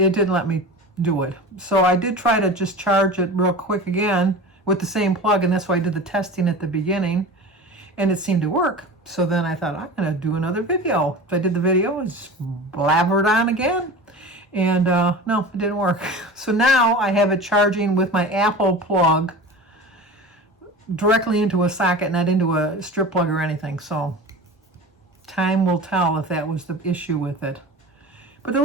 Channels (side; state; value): both; normal; correlation 0.34